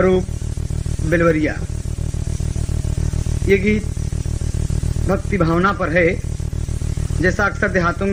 बिलवरिया। ये गीत भक्ति भावना पर है, जैसा अक्सर देहातों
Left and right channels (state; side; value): identical; both; correlation 1.00